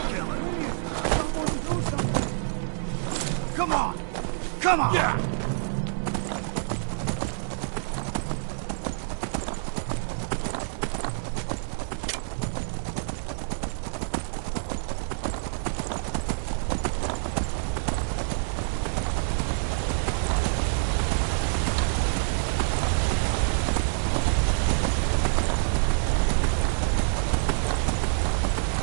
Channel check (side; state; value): left; silent; digital silence